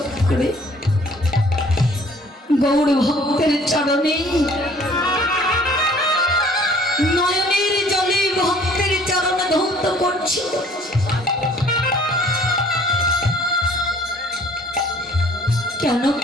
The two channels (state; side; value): normal; both; correlation 0.55